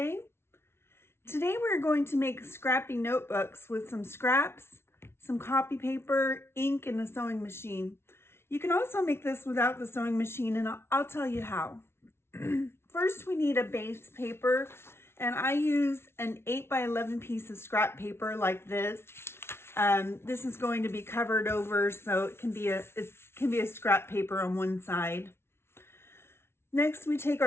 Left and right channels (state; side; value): late; right; 0.12 ms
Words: Today we're going to make scrappy notebooks with some scraps, some copy paper, ink, and a sewing machine. You can also make this without the sewing machine, and I'll tell you how. First, we need a base paper, and I use an 8 by 11 piece of scrap paper like this. This is going to be covered over, so it can be a scrap paper on one side. Next, we take